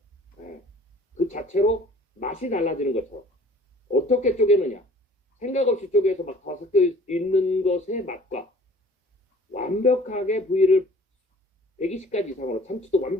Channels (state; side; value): normal; both; correlation 0.51